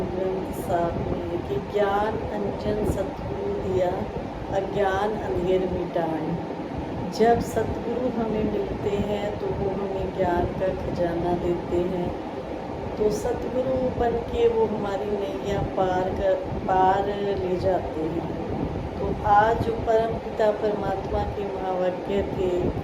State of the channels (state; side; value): identical; both; correlation 1.00